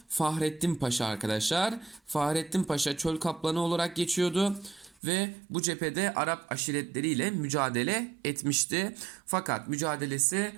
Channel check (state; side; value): drops out; left; at 5.0 s